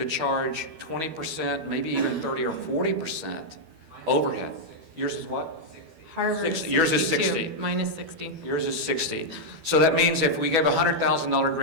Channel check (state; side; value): late; left; 12 ms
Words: charge 20%, maybe even 30 or 40% overhead. Yours is what? Harvard, 60. Yours is 60. Mine is 60. Yours is 60. So that means if we gave a $100,000